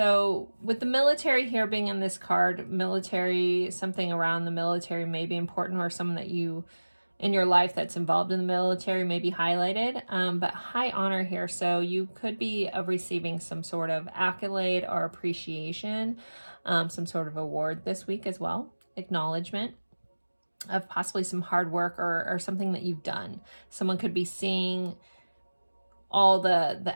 with the military here being in this card, military, something around the military may be important, or someone that you in your life that's involved in the military may be highlighted. But high honor here, so you could be receiving some sort of accolade or appreciation, some sort of award this week as well, acknowledgement of possibly some hard work or something that you've done. Someone could be seeing all the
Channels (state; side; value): inverted; both; correlation -1.00